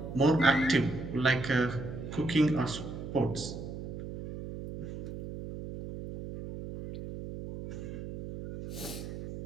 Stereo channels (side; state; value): right; noise; hum, 9 dB below the sound